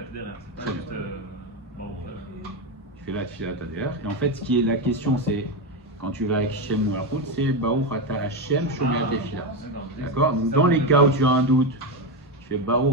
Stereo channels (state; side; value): normal; both; correlation 0.12